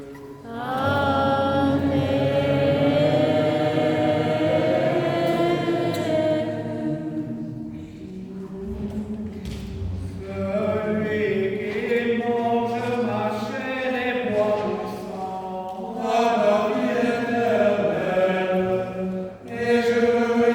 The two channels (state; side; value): identical; both; correlation 1.00